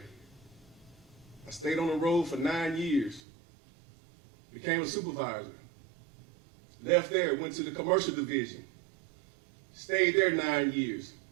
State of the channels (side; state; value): left; drops out; at 3.2 s